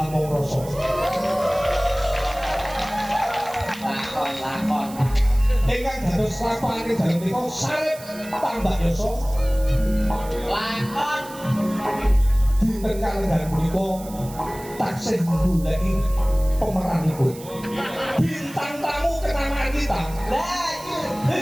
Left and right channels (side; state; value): right; noise; hiss, 17 dB below the sound